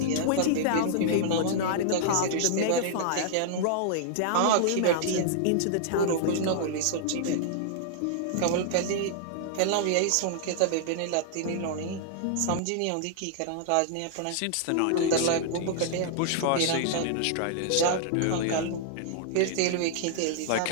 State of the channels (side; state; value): both; different; correlation -0.01